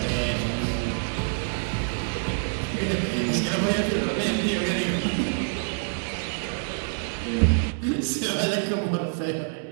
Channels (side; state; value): left; silent; digital silence